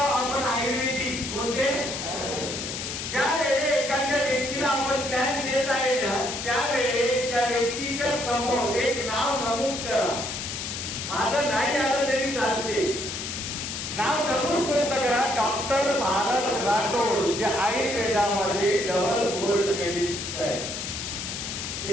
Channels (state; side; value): noise; left; hiss, 5 dB below the sound